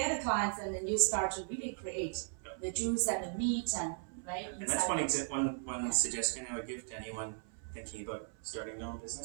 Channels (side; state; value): left; silent; 53 dB below the other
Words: a client, and then you start to really create the juice and the meat and right. And that's one suggestion I would give to anyone thinking about starting their own